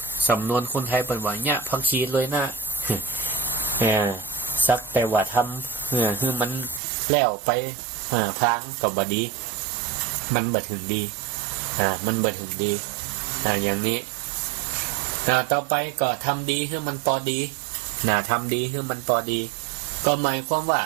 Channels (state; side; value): drops out; left; at 6.8 s